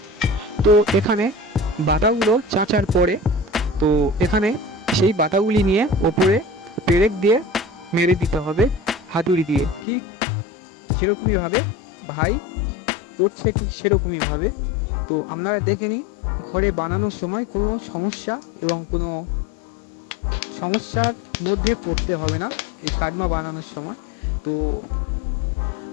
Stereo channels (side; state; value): right; drops out; at 9.9 s